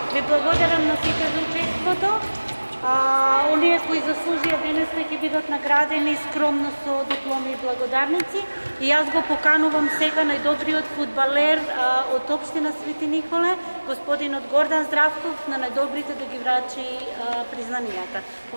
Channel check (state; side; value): inverted; both; correlation -1.00